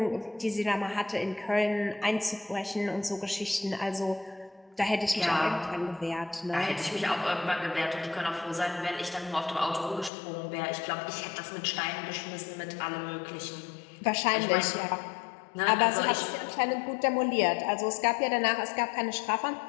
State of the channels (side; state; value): right; drops out; at 10.1 s